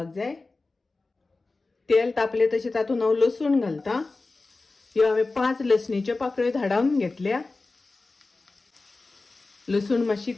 जाय। तेल तापले तशें तातून हांव लसूण घालता। ह्यो हांवें 5 लसणीच्यो पाकळ्यो धाडावन घेतल्या। लसूण मातशी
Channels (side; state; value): right; quieter; 3.5 dB